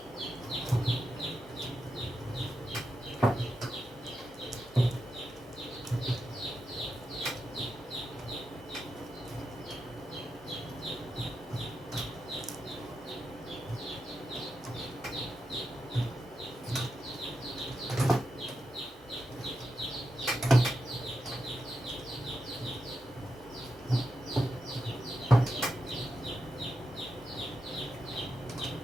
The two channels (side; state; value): both; normal; correlation 0.87